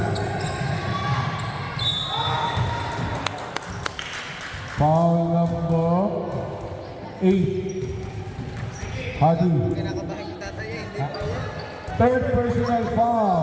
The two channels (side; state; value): both; identical; correlation 1.00